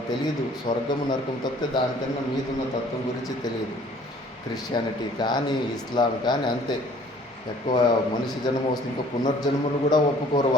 తెలియదు స్వర్గము నరకం తప్పితే దానికన్నా మీదున్న తత్వం గురించి తెలియదు. క్రిస్టియానిటీ కానీ, ఇస్లాం కానీ అంతే. ఎక్కువ మనిషి జన్మ వస్తే ఇంకా పునర్జన్మలు కూడా ఒప్పుకోరు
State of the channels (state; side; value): normal; both; correlation 0.55